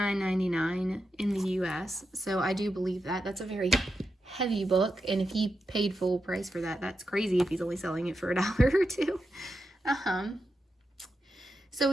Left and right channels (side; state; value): both; normal; correlation 0.87